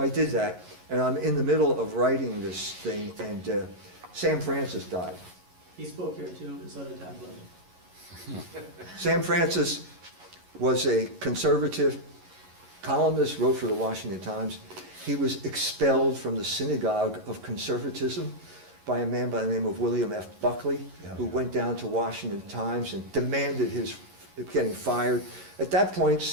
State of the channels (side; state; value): left; late; 11 ms